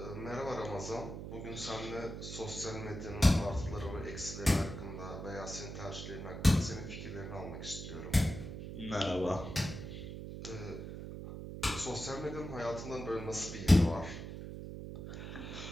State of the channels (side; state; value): right; noise; hum, 8 dB below the sound